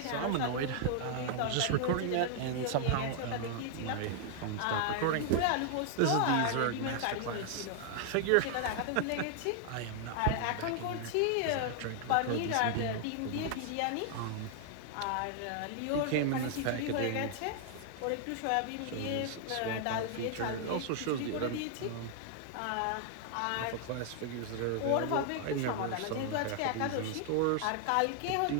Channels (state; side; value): different; both; correlation 0.00